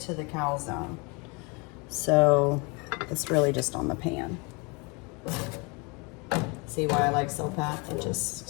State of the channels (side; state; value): right; quieter; 30.0 dB